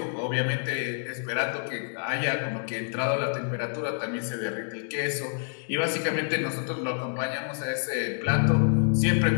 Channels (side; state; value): right; silent; 59 dB below the other